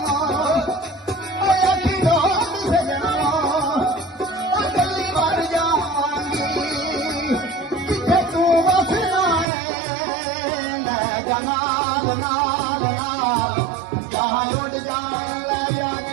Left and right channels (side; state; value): left; drops out; at 9.5 s